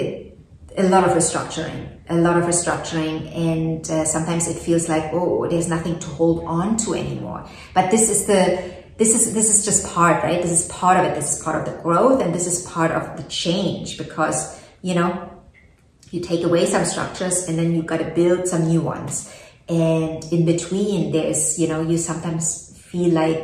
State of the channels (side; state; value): both; identical; correlation 1.00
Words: lot of restructuring, and sometimes it feels like, oh, there's nothing to hold on to anymore. But this is just part, right? This is part of it. This is part of the growth, and this is part of the change, because, you know, you take away some structures and then you've got to build some new ones. And in between, there's, you know, you sometimes feel